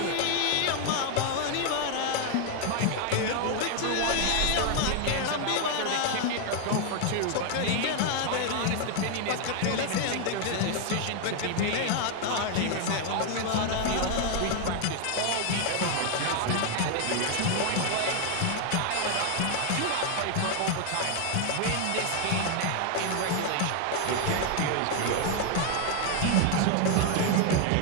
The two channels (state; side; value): different; both; correlation 0.01